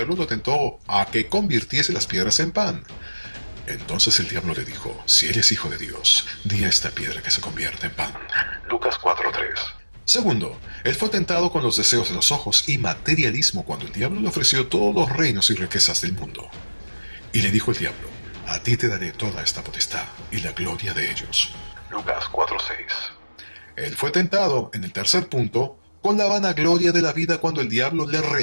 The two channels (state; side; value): inverted; both; correlation -1.00